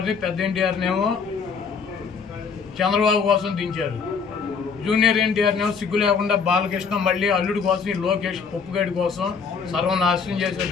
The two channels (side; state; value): right; quieter; 5.7 dB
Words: పెద్ద ఎన్టీఆర్నేమో చంద్రబాబు కోసం దించారు. జూనియర్ ఎన్టీఆర్నేమో సిగ్గు లేకుండా బాలకృష్ణ మళ్ళీ అల్లుడి కోసం ఈ లోకేష్ పప్పుగడి కోసం సర్వనాశనం